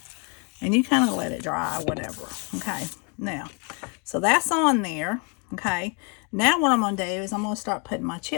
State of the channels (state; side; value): quieter; right; 35.3 dB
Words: And you kind of let it dry or whatever, okay? Now, so that's on there, okay? Now what I'm going to do is I'm going to start putting my